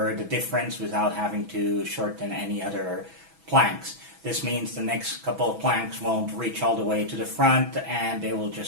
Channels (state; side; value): late; left; 6.1 ms